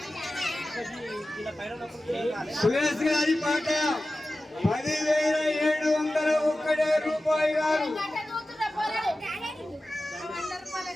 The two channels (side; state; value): both; normal; correlation 0.95